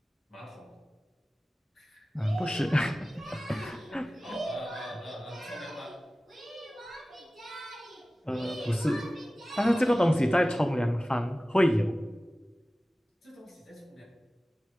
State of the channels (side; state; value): both; normal; correlation 0.97